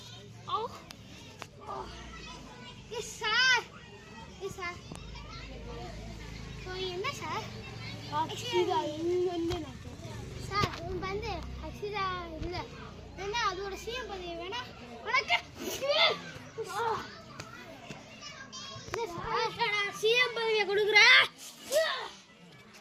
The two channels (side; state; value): both; identical; correlation 1.00